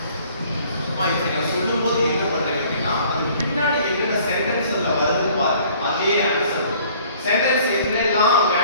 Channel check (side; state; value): both; inverted; correlation -0.55